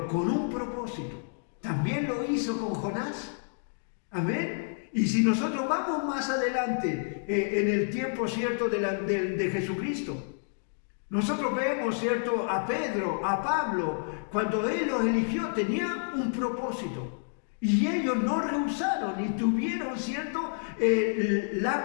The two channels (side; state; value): right; silent; digital silence